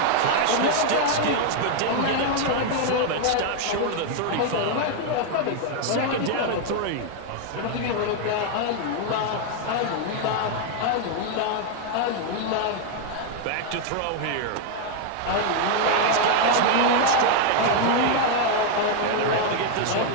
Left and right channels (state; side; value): different; both; correlation 0.00